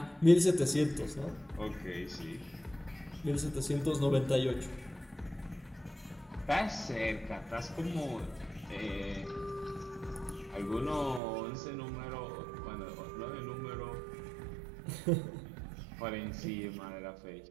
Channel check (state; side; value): drops out; left; at 11.2 s